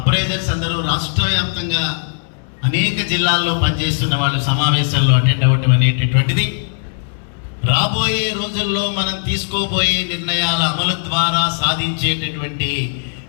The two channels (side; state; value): right; silent; digital silence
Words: అందరూ రాష్ట్ర వ్యాప్తంగా అనేక జిల్లాల్లో పనిచేస్తున్న వాళ్ళు సమావేశాల్లో అటెండ్ అవ్వటం అనేటటువంటిది రాబోయే రోజుల్లో మనం తీసుకోబోయే నిర్ణయాల అమలు ద్వారా సాధించేటటువంటి